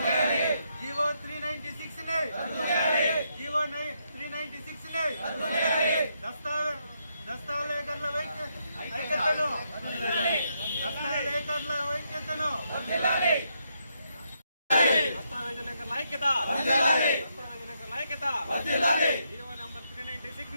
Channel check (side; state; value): both; inverted; correlation -0.78